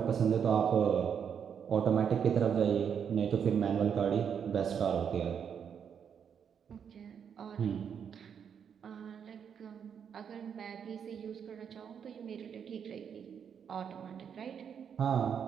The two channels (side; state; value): left; quieter; 7.6 dB